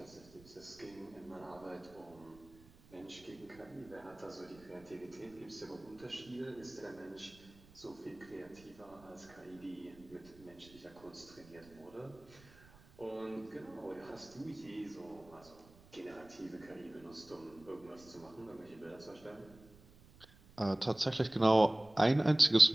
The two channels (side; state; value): right; noise; rumble, 24 dB below the sound